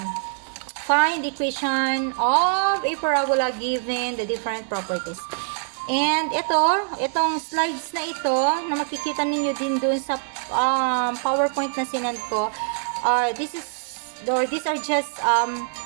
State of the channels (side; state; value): left; silent; digital silence